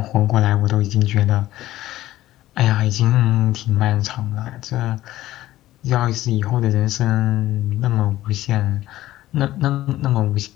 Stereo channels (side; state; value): right; quieter; 15.1 dB